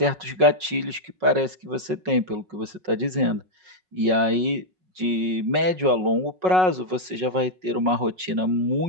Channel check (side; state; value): left; late; 5.4 ms